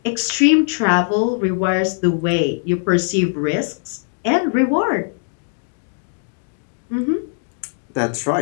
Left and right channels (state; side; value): silent; right; digital silence